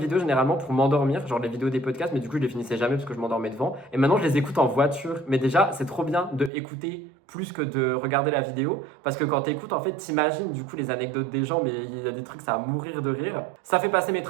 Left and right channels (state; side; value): drops out; left; at 6.5 s